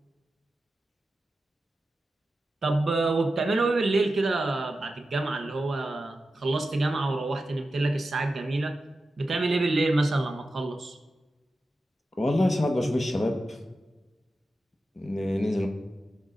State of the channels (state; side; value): normal; both; correlation 0.92